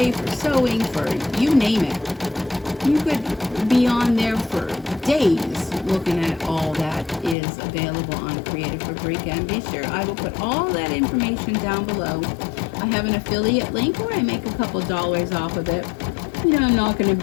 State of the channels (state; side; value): drops out; right; at 7.4 s